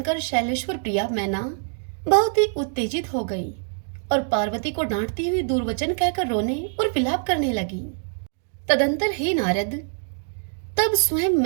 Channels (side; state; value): left; silent; digital silence